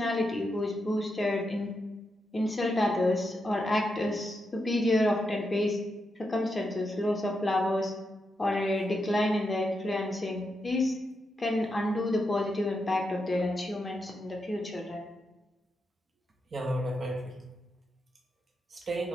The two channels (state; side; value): normal; both; correlation 0.85